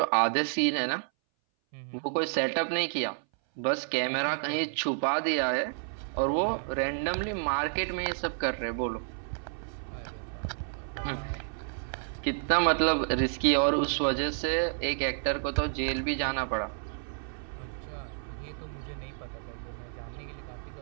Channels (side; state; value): left; silent; 58 dB below the other